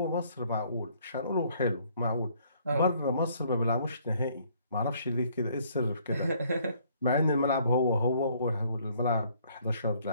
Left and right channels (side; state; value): both; inverted; correlation -0.63